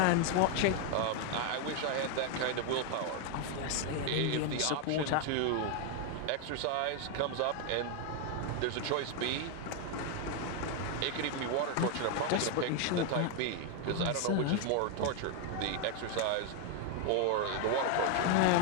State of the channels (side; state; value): both; different; correlation 0.01